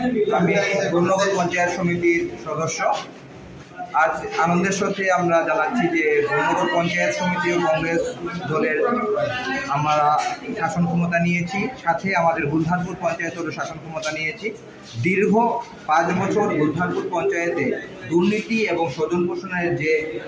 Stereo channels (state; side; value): identical; both; correlation 1.00